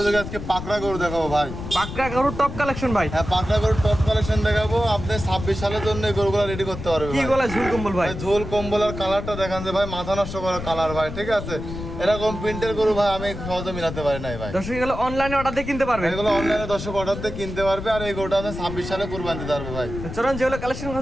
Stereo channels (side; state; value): left; noise; rumble, 8 dB below the sound